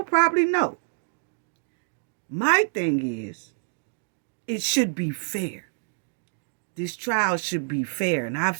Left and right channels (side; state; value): left; silent; digital silence